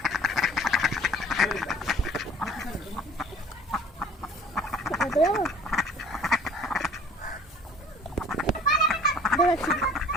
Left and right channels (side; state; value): both; normal; correlation 0.49